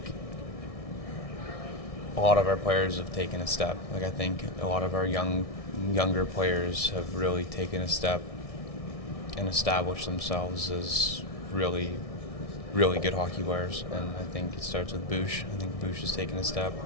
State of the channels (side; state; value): right; late; 1.6 ms